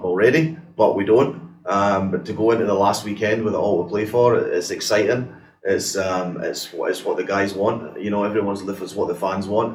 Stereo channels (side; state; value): both; identical; correlation 1.00